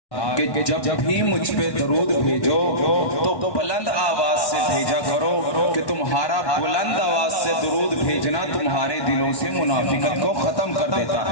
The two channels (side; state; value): right; late; 1.1 ms